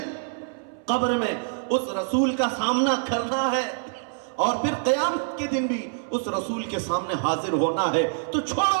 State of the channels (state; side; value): silent; left; 61 dB below the other